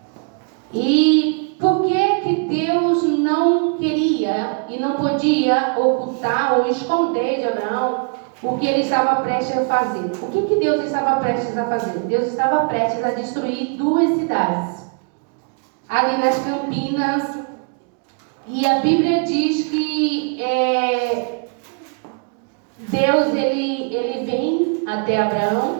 E por que Deus não queria e não podia ocultar ou esconder de Abraão o que ele estava prestes a fazer? O que Deus estava prestes a fazer? Deus estava prestes a destruir 2 cidades ali nas Campinas. E a Bíblia diz que Deus ele vem até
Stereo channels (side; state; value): left; quieter; 38.7 dB